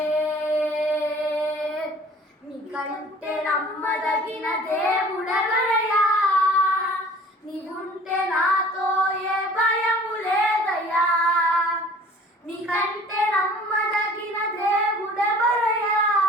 నమ్మదగిన దేవుడెవరయ్యా, నీవుంటే నాతో ఏ భయము లేదయ్యా. నీకంటే నమ్మదగిన దేవుడెవరయ్యా,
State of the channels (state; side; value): normal; both; correlation 0.49